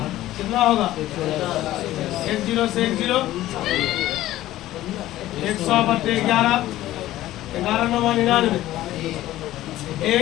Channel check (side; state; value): right; quieter; 14.9 dB